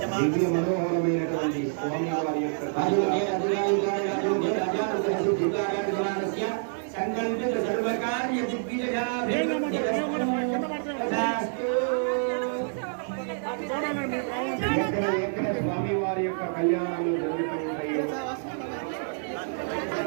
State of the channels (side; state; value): left; silent; digital silence